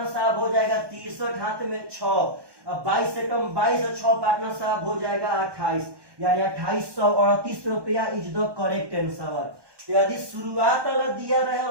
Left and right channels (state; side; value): late; left; 1.2 ms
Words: साहब हो जाएगा 63, हाथ में 6। 22 से कम 22 और 6 पार्टनर साहब हो जाएगा 28, यानी 2838 रुपया इज द करेक्ट आंसर। यदि शुरुआत वाला दिया रहे